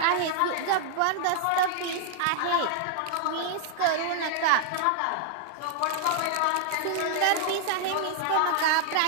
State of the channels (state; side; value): different; both; correlation -0.01